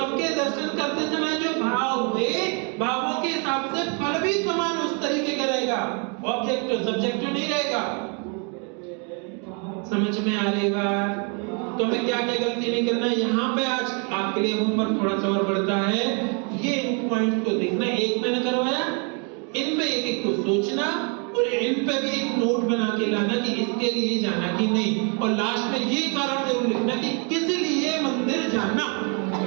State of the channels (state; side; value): quieter; left; 36.4 dB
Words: दर्शन करते समय जो भाव हुए, भावों के हिसाब से फल भी समान उस तरीके का रहेगा, ऑब्जेक्टिव सब्जेक्टिव नहीं रहेगा। समझ में आ रही बात? तो हमें क्या क्या गलती नहीं करना है। यहाँ पे आज आपके लिए होमवर्क थोड़ा सा और बढ़ता है, ये इन पॉइंट को देखना, एक मैंने करवाया, इन पे एक एक को सोचना, और इन पे भी एक नोट बना के लाना कि इसके लिए जाना कि नहीं, और लास्ट में ये कारण जरूर लिखना कि किस लिए मंदिर जाना।